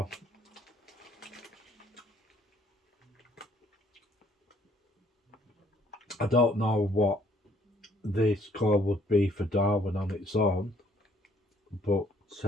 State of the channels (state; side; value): normal; both; correlation 0.63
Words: I don't know what the score would be for Darwin on its own, but